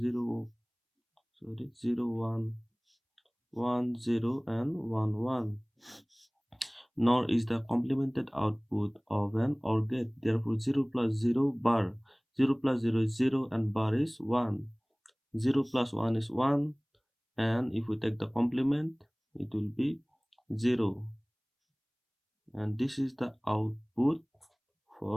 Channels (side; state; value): both; identical; correlation 1.00